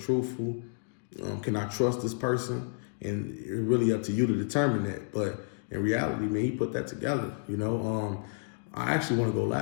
Can I trust this person? And it's really up to you to determine that. But in reality, man, he put that together, you know. I actually want to go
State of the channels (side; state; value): right; silent; digital silence